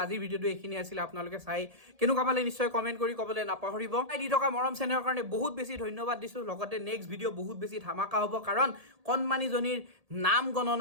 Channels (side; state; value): left; late; 1.7 ms